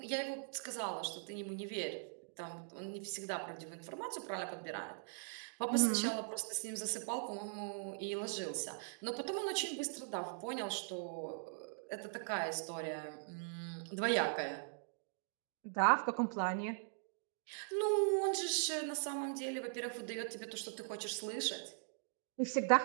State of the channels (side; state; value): left; silent; digital silence